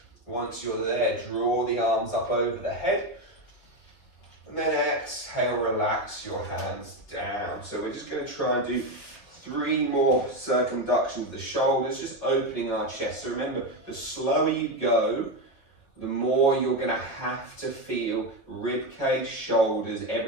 Once you're there, draw the arms up over the head. And then exhale, relax your hands down. So we're just going to try and do 3 more circumductions of the shoulders, just opening our chest. So remember, the slower you go, the more you're going to have to feel rib cage, shoulders,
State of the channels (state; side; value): late; right; 4.9 ms